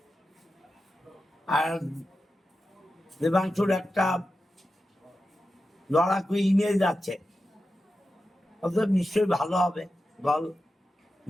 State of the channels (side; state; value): both; normal; correlation 0.91